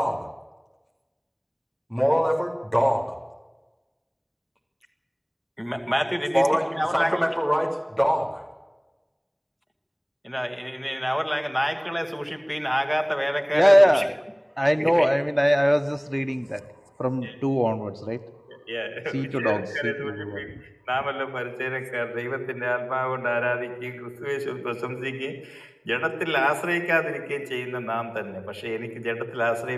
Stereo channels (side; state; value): both; identical; correlation 1.00